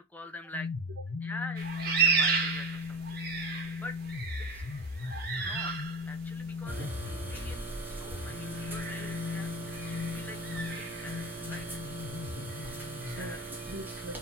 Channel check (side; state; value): both; normal; correlation 0.29